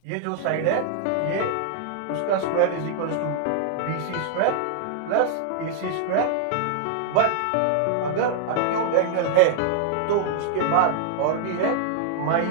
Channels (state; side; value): different; both; correlation -0.01